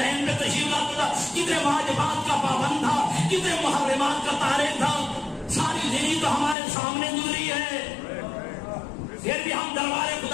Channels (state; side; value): drops out; right; at 6.6 s